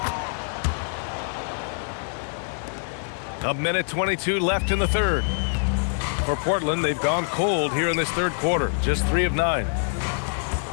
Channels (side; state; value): right; silent; digital silence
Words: A minute 22 left in the 3rd. For Portland, they've gone cold here in this 3rd quarter. Just 3 of 9.